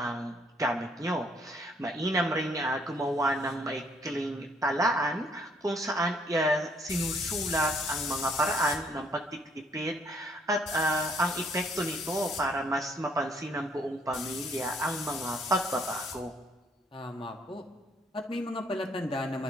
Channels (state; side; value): normal; both; correlation 0.66